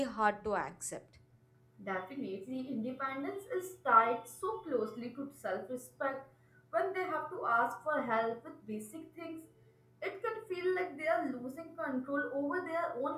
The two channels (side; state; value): both; identical; correlation 1.00